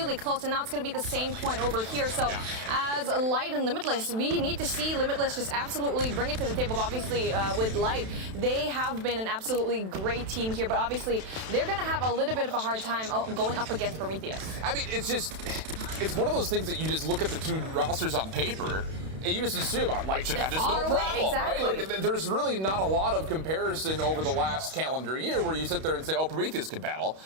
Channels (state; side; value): late; left; 32 ms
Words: close, and now it's going to be the same point over here. So as Light and Limitless, we need to see Limitless just absolutely bring it to the table. Obviously, with Light, they have been an absolutely great team here, but obviously they're going to have a little bit of a hard time going up against Prometheus. I mean, it's one of those things that you just look at the two rosters on paper, and you just assume Light should have this no problem, exactly. right? Like, there's really not a lot of comparison over the last calendar year where you sit there and say, oh, Prometheus can battle.